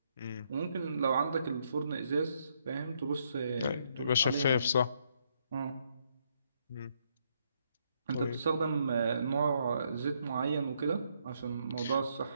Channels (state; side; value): inverted; both; correlation -0.73